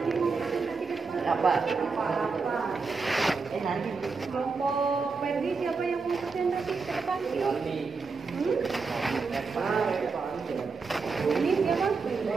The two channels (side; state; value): left; quieter; 4.6 dB